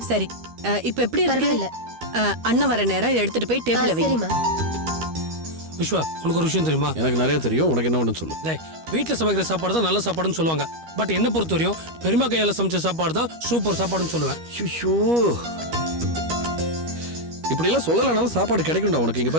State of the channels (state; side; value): late; left; 13 ms